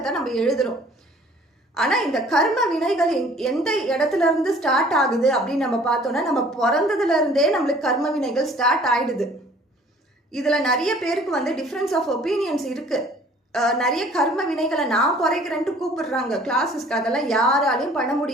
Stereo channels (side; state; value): both; normal; correlation 0.53